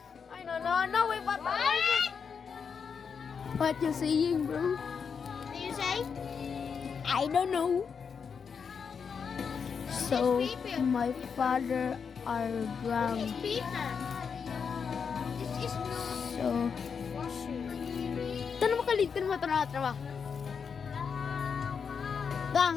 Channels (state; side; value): quieter; right; 6.3 dB